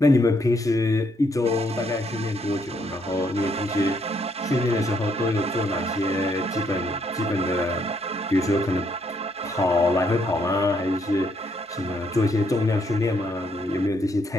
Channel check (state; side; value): normal; both; correlation 0.72